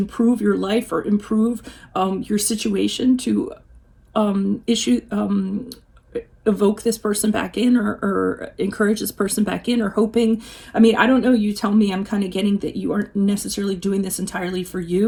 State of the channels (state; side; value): identical; both; correlation 1.00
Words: your life, or improve your situation to evoke this person back in, or encourage this person back in, or hoping. I don't know, you tell me. I'm kind of getting that you aren't necessarily doing this entirely for